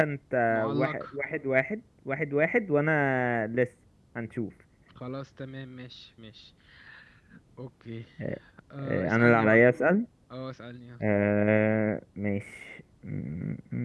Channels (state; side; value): identical; both; correlation 1.00